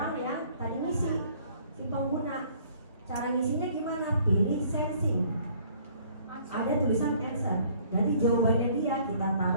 yang tadi ngisi, si pengguna. Cara ngisinya gimana? Pilih sensing. Ada tulisan answer. Berarti jawabannya dia kita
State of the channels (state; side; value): inverted; both; correlation -0.58